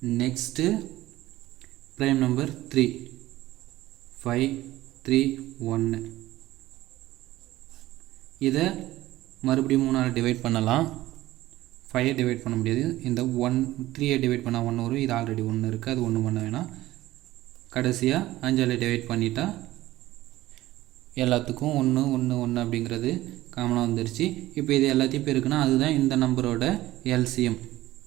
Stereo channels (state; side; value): quieter; left; 16.3 dB